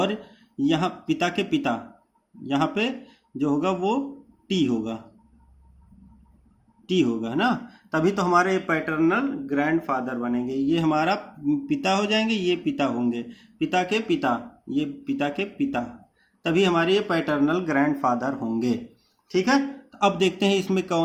यहाँ पिता के पिता, यहाँ पे जो होगा वो टी होगा, टी होगा ना, तभी तो हमारे पैटर्नल ग्रैंडफादर बनेंगे। ये हमारा पिता हो जाएंगे, ये पिता होंगे, पिता के पिता, ये पिता के पिता, तभी हमारे ये पैटर्नल ग्रैंडफादर होंगे, ठीक है। तो अब देखते हैं इसमें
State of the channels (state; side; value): identical; both; correlation 1.00